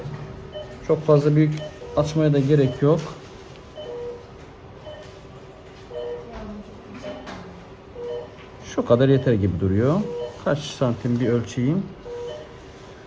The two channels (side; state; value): both; identical; correlation 1.00